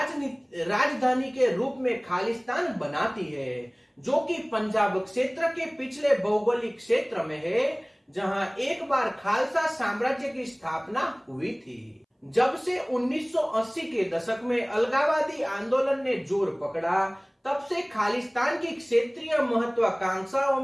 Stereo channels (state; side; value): identical; both; correlation 1.00